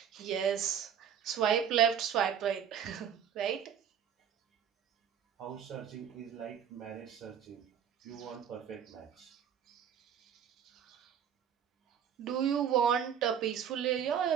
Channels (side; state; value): left; quieter; 8.7 dB